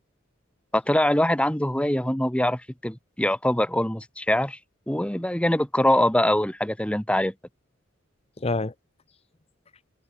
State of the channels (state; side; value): normal; both; correlation 0.92